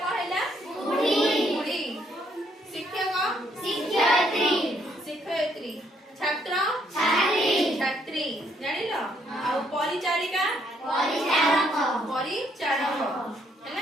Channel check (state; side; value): normal; both; correlation 0.70